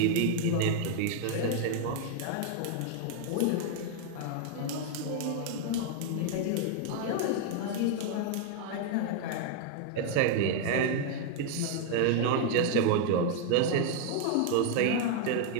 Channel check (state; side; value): different; both; correlation 0.00